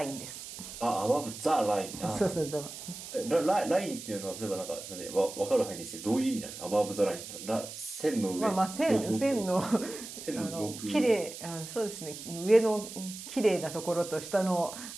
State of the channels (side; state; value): right; noise; hiss, 11 dB below the sound